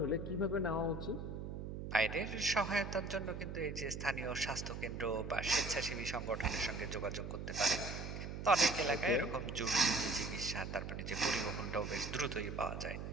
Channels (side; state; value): right; noise; hum, 6 dB below the sound